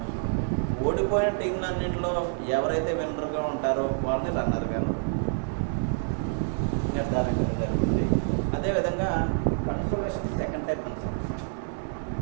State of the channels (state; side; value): silent; left; 60 dB below the other